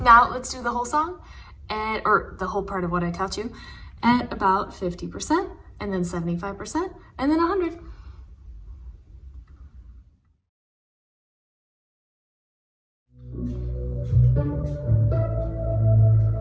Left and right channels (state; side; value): identical; both; correlation 1.00